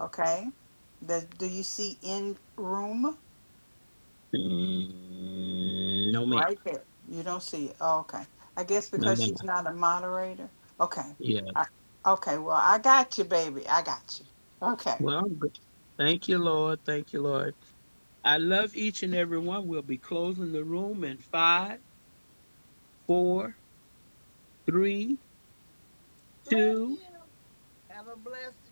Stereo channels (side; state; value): both; inverted; correlation -1.00